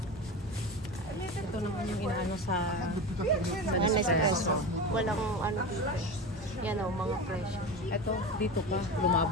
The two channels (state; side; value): normal; both; correlation 0.26